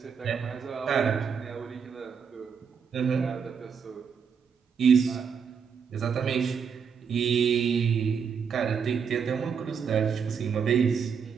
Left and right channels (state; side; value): quieter; left; 6.6 dB